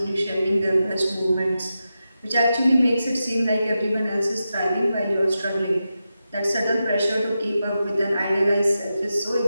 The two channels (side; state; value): both; inverted; correlation -0.90